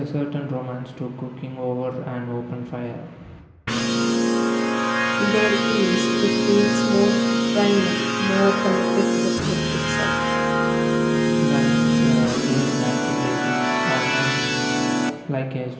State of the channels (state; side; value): identical; both; correlation 1.00